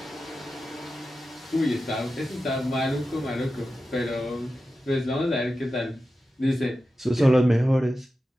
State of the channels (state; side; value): normal; both; correlation 0.92